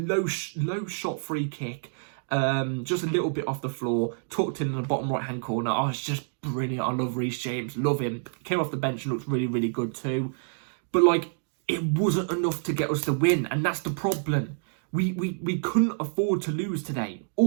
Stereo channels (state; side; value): silent; left; digital silence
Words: shot free kick, just a little bit off the floor, tucked in the bottom right hand corner. Oh, it's just brilliant. I love Reece James, love him. Came off the bench and looked really, really good too. But like, it wasn't enough to get us the win, and that's the problem. We couldn't afford to lose today